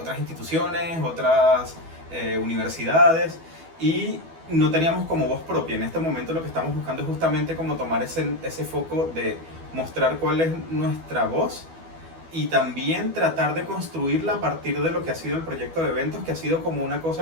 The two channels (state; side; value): late; left; 12 ms